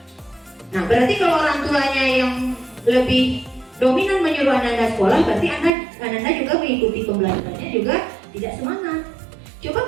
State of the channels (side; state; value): left; drops out; at 5.7 s